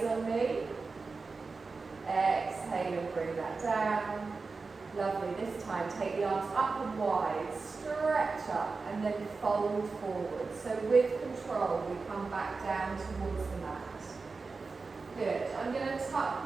on me. Exhale and bring that down. Lovely. This time, take the arms up and wide, stretch up and then fold forward. So with control, we come back down towards the mat. Good. I'm going to tuck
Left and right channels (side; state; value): left; quieter; 4.2 dB